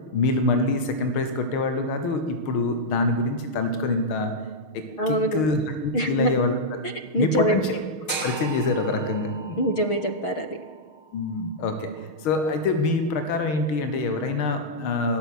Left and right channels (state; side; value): late; right; 6.4 ms